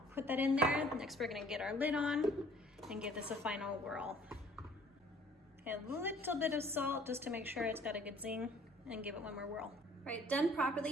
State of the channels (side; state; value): both; normal; correlation 0.55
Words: put that in there. Next, we're gonna get our lid on and give this a final whirl. A little bit of salt just to make sure it's got a good zing, and give it one more whirl. Right, done